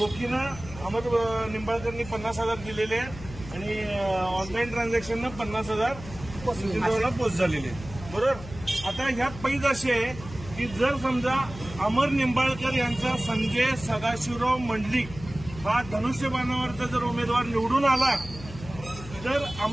अमर निंबाळकरनी 50,000 दिलेले आहेत आणि ऑनलाईन ट्रान्झॅक्शननं 50,000 नितीन पोस्ट झालेले आहेत। बरोबर। आता ह्यात पैज अशी आहे की जर समजा अमर निंबाळकर यांचा संजय सदाशिवराव मंडलिक हा धनुष्यबाणावरचा जर उमेदवार निवडून आला तर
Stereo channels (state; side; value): noise; left; hum, 14 dB below the sound